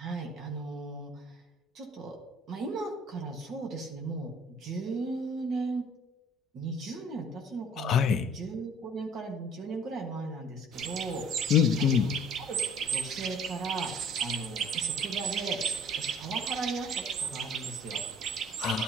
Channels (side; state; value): both; normal; correlation 0.52